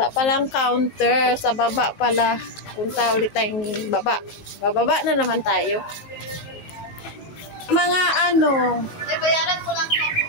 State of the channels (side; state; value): right; late; 19 ms